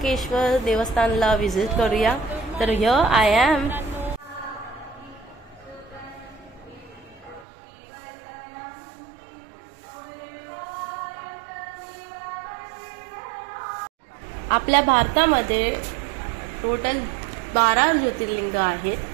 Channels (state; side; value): drops out; left; at 7.5 s